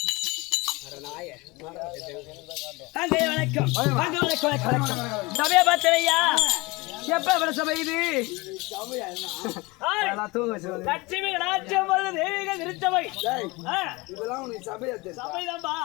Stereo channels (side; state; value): right; quieter; 24.0 dB